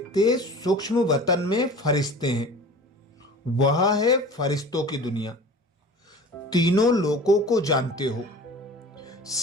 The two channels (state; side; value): normal; both; correlation 0.40